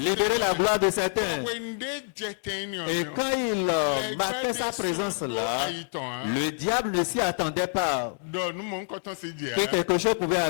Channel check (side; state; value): right; silent; 60 dB below the other